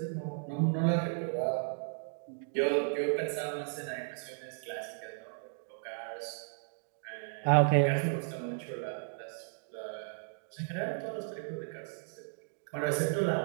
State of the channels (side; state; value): left; silent; digital silence